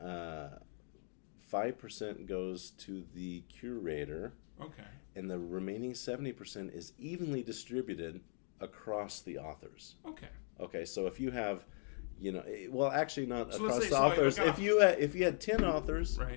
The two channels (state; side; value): silent; right; 52 dB below the other